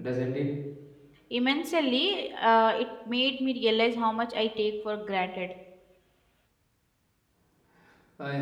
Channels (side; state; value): both; identical; correlation 1.00